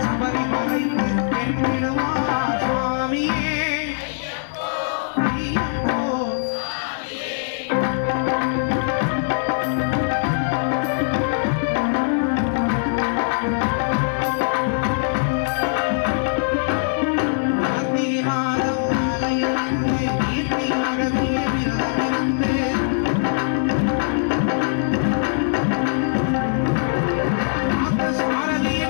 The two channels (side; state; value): right; silent; digital silence